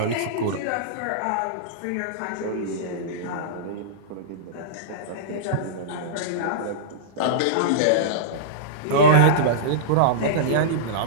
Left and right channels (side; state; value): both; different; correlation -0.04